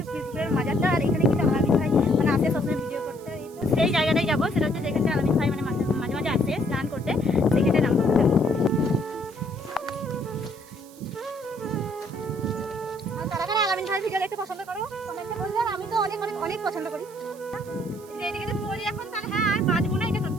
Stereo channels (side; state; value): right; noise; hiss, 23 dB below the sound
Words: পীরপুকুরের মাজারটা। আর এখানে কিন্তু আলামিন ভাই মানে আসে সবসময় ভিডিও করতে। তো সেই জায়গাটাই যাবো, সেটা হচ্ছে যেখানে আলামিন ভাই মানে মাঝে মাঝে আসে স্নান করতে, সেখানে নাম। আলামিন ভাই ভিডিও দেখতে পছন্দ করো, কমেন্টে বলবে। আর আমি তো অনেক অনেক অনেক পছন্দ করি। এইদিকে তো পড়ি এখন, তাহলে হ্যাঁ আর বাঁচবো না, এটা